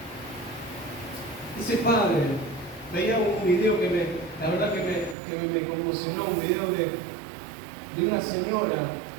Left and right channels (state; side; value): drops out; left; at 5.2 s